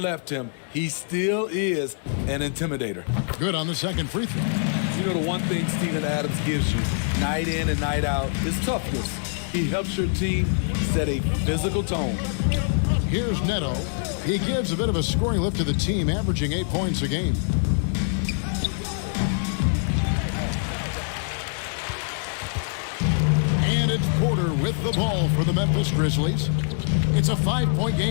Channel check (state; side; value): silent; right; 62 dB below the other